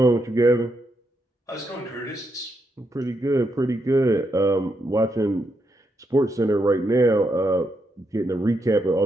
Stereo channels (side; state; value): both; normal; correlation 0.81